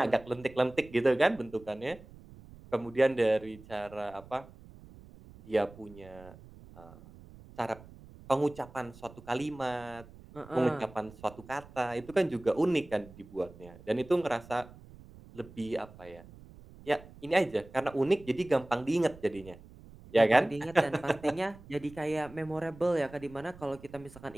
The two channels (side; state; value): right; noise; rumble, 20 dB below the sound